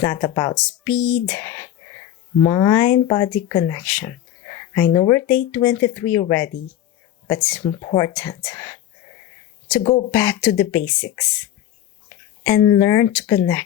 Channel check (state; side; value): quieter; right; 11.9 dB